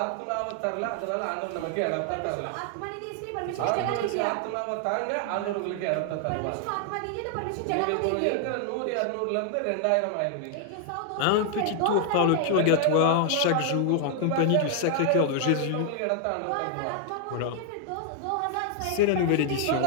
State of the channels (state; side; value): different; both; correlation 0.00